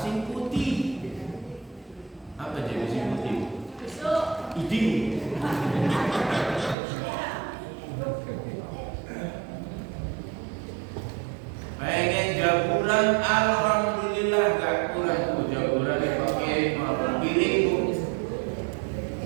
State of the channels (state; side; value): drops out; left; at 6.8 s